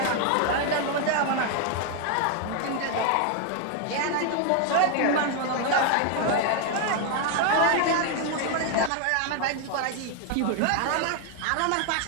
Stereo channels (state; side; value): different; both; correlation 0.01